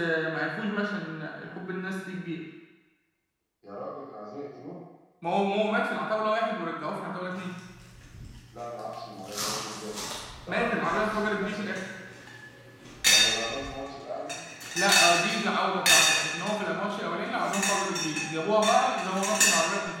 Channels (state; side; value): identical; both; correlation 1.00